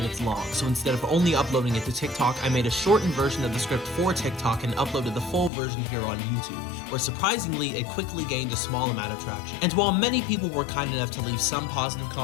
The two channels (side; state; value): right; drops out; at 5.5 s